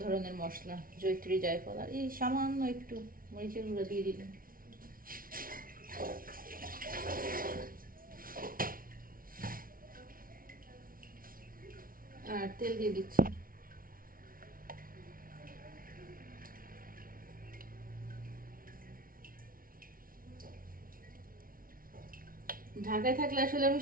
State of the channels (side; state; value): left; late; 0.42 ms